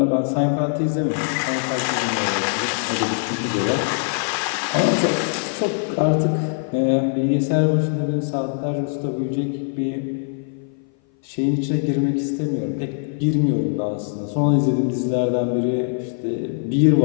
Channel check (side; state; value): right; silent; 57 dB below the other